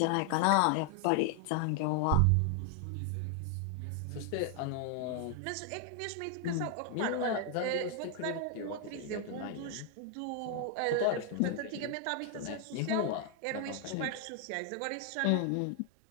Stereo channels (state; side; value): different; both; correlation 0.00